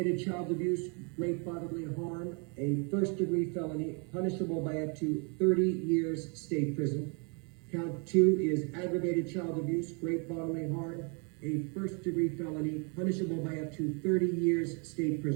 child abuse, great bodily harm, a first-degree felony punishable by up to 30 years state prison. Count 2 is aggravated child abuse, great bodily harm, a first-degree felony punishable by up to 30 years state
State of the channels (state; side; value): quieter; left; 35.2 dB